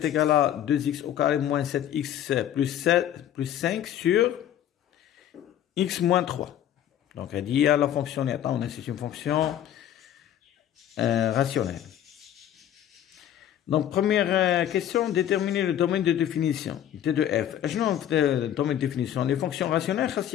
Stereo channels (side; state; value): right; quieter; 10.9 dB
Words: égal à 2x au carré moins 7x plus 5 sur x moins 3. Donc, elle dit à la fonction, c'est une fonction rationnelle. Donc, première question, déterminer le domaine de définition T de f. Le domaine de définition, les fonctions rationnelles,